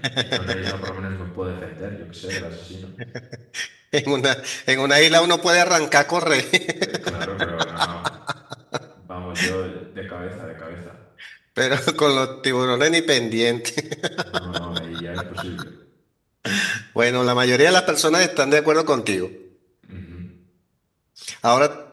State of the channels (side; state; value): both; identical; correlation 1.00